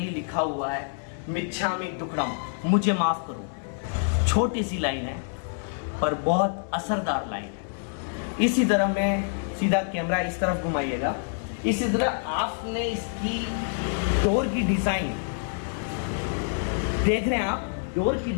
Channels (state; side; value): silent; right; digital silence